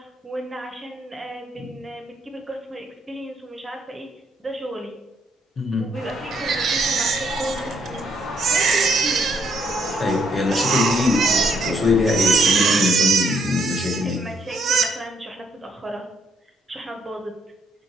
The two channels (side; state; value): both; normal; correlation 0.70